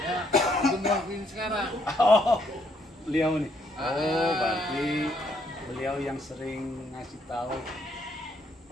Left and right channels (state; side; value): normal; both; correlation 0.71